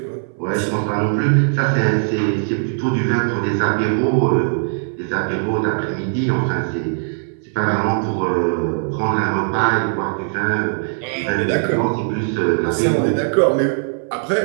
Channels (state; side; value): silent; left; 62 dB below the other